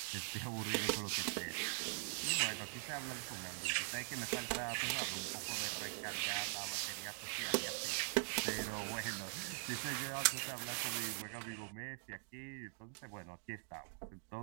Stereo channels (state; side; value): silent; left; digital silence